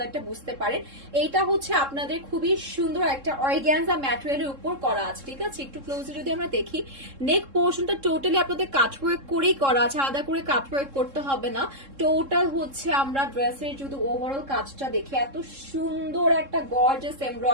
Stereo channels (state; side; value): late; left; 3.7 ms